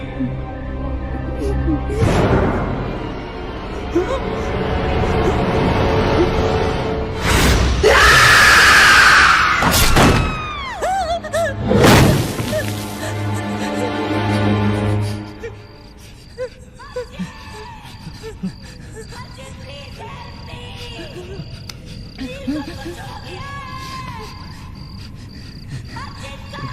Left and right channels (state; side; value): identical; both; correlation 1.00